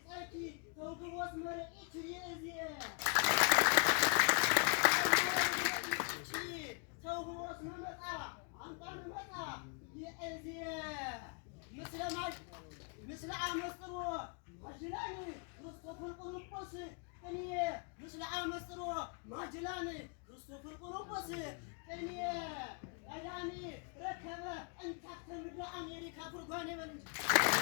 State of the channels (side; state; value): right; quieter; 36.8 dB